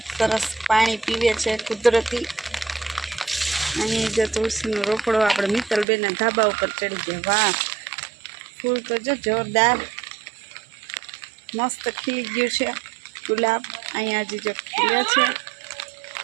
સરસ પાણી પીવે છે કુદરતી. અહીં જો તુલસીનો રોકડો આપણે મિત્તલબેનના ધાબા ઉપર ચડી ગયા. વાહ ફૂલ તો જો જોરદાર મસ્ત ખીલી ગયું છે ગુલાબ. અહીંયા હજી જો ખીલે છે.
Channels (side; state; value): left; drops out; at 5.9 s